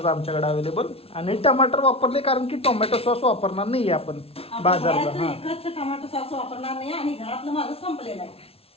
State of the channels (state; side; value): late; right; 0.28 ms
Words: आमच्याकडे अवेलेबल. आणि टमाटर वापरले कारण की टोमॅटो सॉस वापरणार नाही आपण बाजारचा. हा, एकच टमाटो सॉस वापरणार नाही आणि घरातलं माझं संपलेलं आहे,